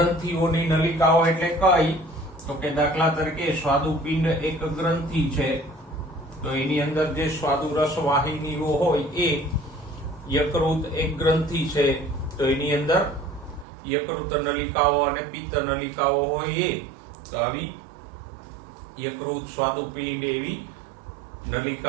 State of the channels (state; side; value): drops out; left; at 13.7 s